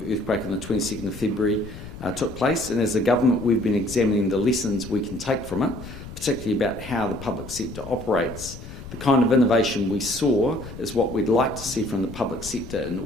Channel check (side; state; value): left; noise; rumble, 13 dB below the sound